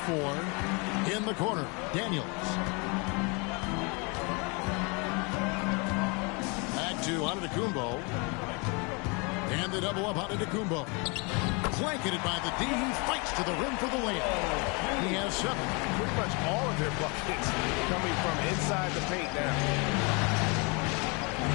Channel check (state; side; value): quieter; right; 31.1 dB